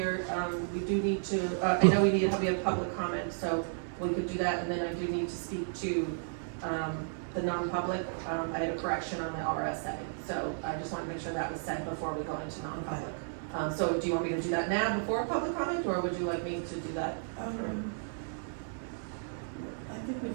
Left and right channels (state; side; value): silent; left; 56 dB below the other